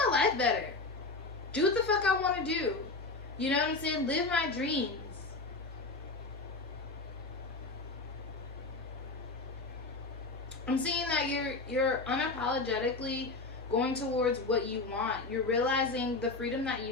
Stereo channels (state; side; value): quieter; right; 3.5 dB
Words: life better. Do what the fuck I want to do. You know what I'm saying? Live my dreams. I'm seeing that you're unapologetically going towards what you want. You're realizing the freedom that